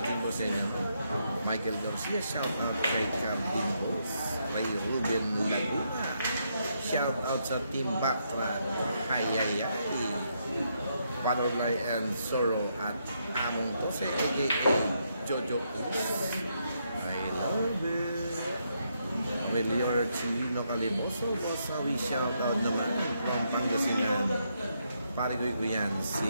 po sa inyo. Michael Garcia, shout out kay Calvin Boss. Ray Ruben Laguna, shout out sa Team Batra. Hayayay. Panorlay and Soro at Among Tose, a.k.a. Jojo Is. I love it. Melior Chilino Calimoso, we shout out naman from Pangasinan. Parigoy ko yan,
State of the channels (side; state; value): both; inverted; correlation -0.78